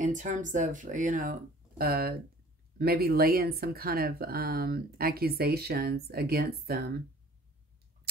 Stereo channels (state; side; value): normal; both; correlation 0.50